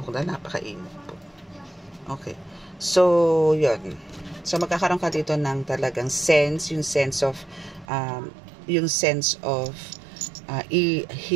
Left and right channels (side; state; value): left; drops out; at 7.9 s